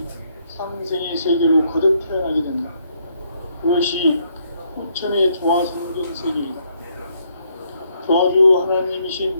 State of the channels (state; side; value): inverted; both; correlation -0.72